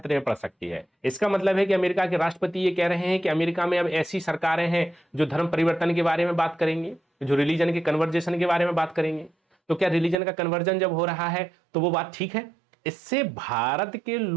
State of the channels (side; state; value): left; drops out; at 10.2 s